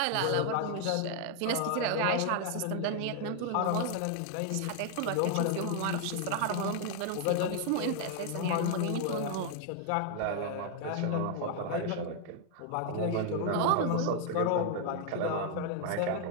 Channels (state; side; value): different; both; correlation 0.00